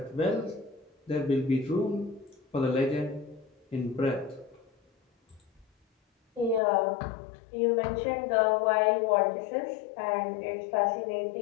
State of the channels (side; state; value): right; drops out; at 6.6 s